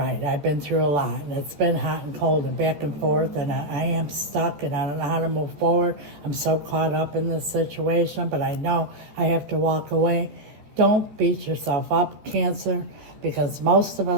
I've been through a lot, and it's been hot and cold and back and forth, and I am stuck, and I don't know how to move forward. I'm so caught up in this situation, but I know I have to walk away. Don't beat yourself up, Cancer, because most of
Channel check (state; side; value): late; left; 14 ms